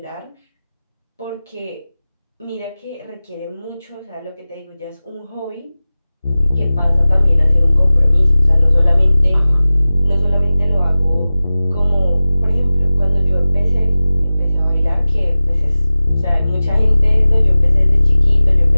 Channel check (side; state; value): both; inverted; correlation -0.96